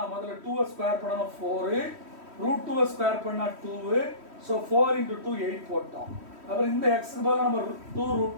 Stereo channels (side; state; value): left; late; 3.1 ms